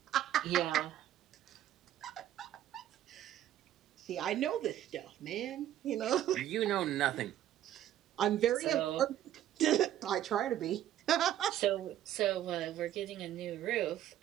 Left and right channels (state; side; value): quieter; left; 11.9 dB